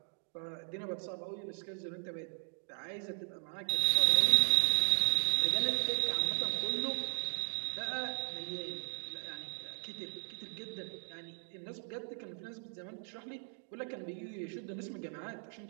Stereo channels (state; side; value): silent; left; 53 dB below the other